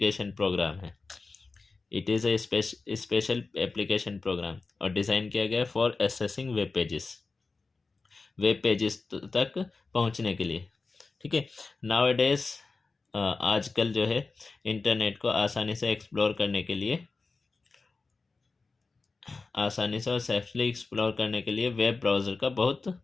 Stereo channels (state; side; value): quieter; right; 4.0 dB